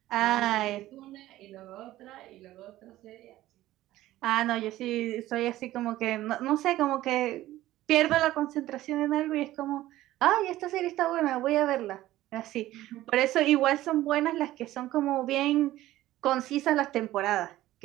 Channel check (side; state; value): left; quieter; 15.4 dB